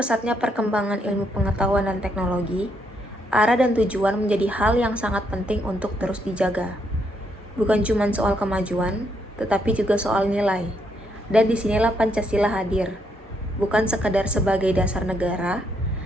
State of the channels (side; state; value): both; normal; correlation 0.75